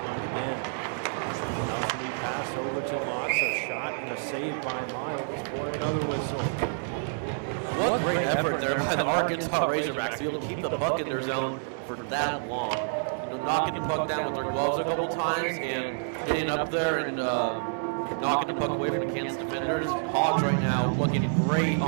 line again. Now it's going to be passed over to Lotz. A shot and a save by Miles for another whistle. What great effort there by the Arkansas Razorbacks to be able to keep the puck in their zone for that long. You know, knocking the puck down with their gloves a couple times and getting up there and knocking the puck away from the Kansas defenders. Hogs right now looking great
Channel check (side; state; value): left; silent; digital silence